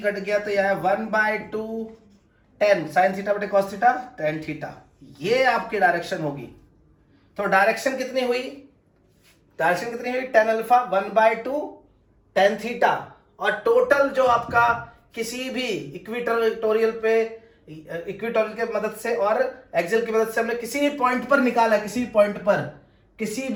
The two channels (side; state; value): both; identical; correlation 1.00